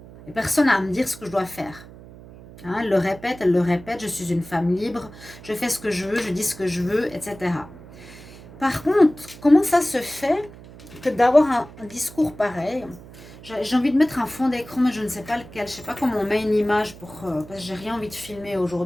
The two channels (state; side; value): noise; right; hum, 18 dB below the sound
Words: et personne n'a à me dire ce que je dois faire. Elle le répète, je suis une femme libre, je fais ce que je veux, je dis ce que je veux, etc. Par contre, comment ça se fait que d'avoir un discours pareil? J'ai envie de mettre un fond d'écran, mais je ne sais pas lequel. Je ne sais pas comment on met une image parce que j'ai rien envie de filmer